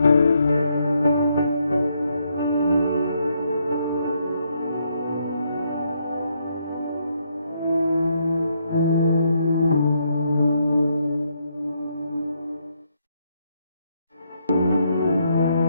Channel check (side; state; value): both; inverted; correlation -0.75